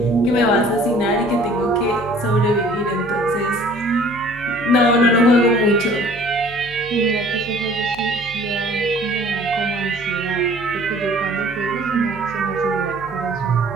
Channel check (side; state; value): left; noise; hum, 20 dB below the sound